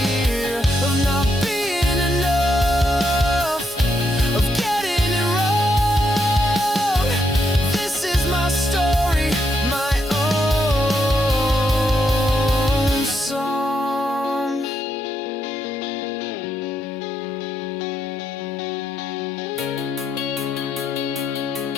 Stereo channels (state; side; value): normal; both; correlation 0.79